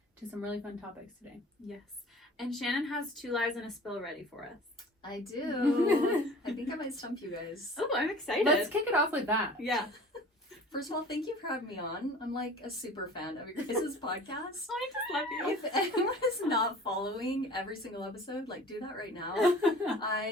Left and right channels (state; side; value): normal; both; correlation 0.44